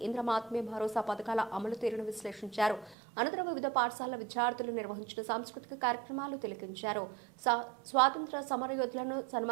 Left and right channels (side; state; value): left; drops out; at 3.0 s